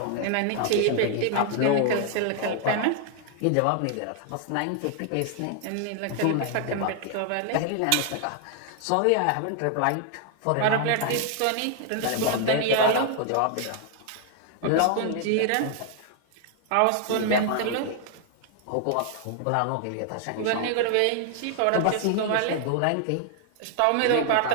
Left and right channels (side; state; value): both; different; correlation 0.00